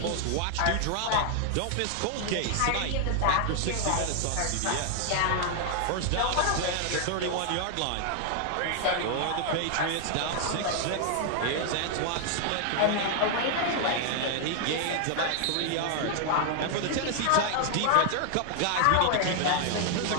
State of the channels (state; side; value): different; both; correlation 0.00